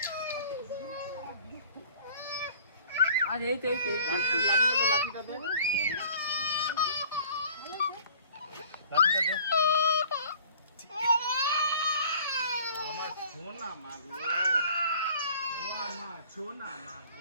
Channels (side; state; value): both; inverted; correlation -0.50